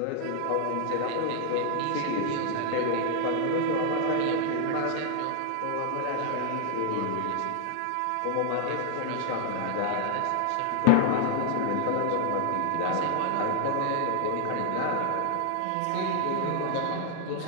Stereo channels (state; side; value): different; both; correlation 0.00